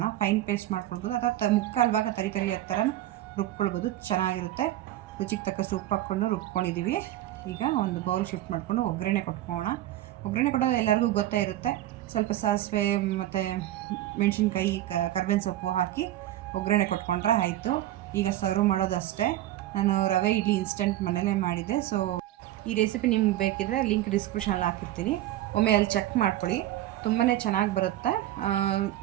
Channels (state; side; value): quieter; left; 14.2 dB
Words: ಫೈನ್ ಪೇಸ್ಟ್ ಮಾಡ್ಕೊಳ್ಬೋದು, ಅಥವಾ ಮುಕ್ಕಾಲು ಭಾಗ ತರಿ ಥರ ರುಬ್ಕೊಳ್ಬೋದು. ಚೆನ್ನಾಗಿರುತ್ತೆ. ರುಚಿಗೆ ತಕ್ಕಷ್ಟು ಉಪ್ಪು ಹಾಕ್ಕೊಂಡು ರುಬ್ಕೊಂಡಿದ್ದೀವಿ. ಈಗ ಒಂದು ಬೌಲ್ ಶಿಫ್ಟ್ ಮಾಡಿಕೊಂಡು ಒಗ್ಗರಣೆ ಕೊಟ್ಕೊಳ್ಳೋಣ. ಒಗ್ಗರಣೆ ಕೊಡೋದು ಎಲ್ಲರಿಗೂ ಗೊತ್ತೇ ಇರುತ್ತೆ. ಸ್ವಲ್ಪ ಸಾಸಿವೆ ಮತ್ತು ಮೆಣಸಿನ್ಕಾಯಿ, ಕರ್ಬೇವಿನ ಸೊಪ್ಪು ಹಾಕಿ ಒಗ್ಗರಣೆ ಕೊಟ್ಕೊಂಡ್ರೆ ಆಯಿತು. ಈಗ ಸರ್ವ್ ಮಾಡೋದಷ್ಟೇ. ನಾನು ರವೆ ಇಡ್ಲಿ ಇನ್ಸ್ಟೆಂಟ್ ಮನೇಲೇ ಮಾಡಿದ್ದೆ. ಸೊ ಈ ರೆಸಿಪಿ ನಿಮ್ಗೆ ಬೇಕಿದ್ರೆ ಲಿಂಕ್ ಡಿಸ್ಕ್ರಿಪ್ಷನಲ್ಲಿ ಹಾಕಿರ್ತೀನಿ. ಒಮ್ಮೆ ಅಲ್ಲಿ ಚೆಕ್ ಮಾಡ್ಕೊಳ್ಳಿ. ತುಂಬಾ ಚೆನ್ನಾಗಿ ಬರುತ್ತೆ.